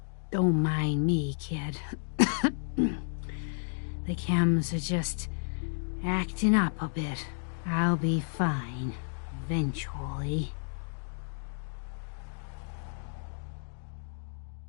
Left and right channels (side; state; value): right; silent; digital silence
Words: Don't mind me, kid. The chems are just acting up a bit. I'll be fine, eventually.